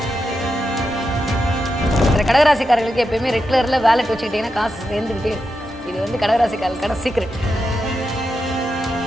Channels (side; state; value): both; normal; correlation 0.87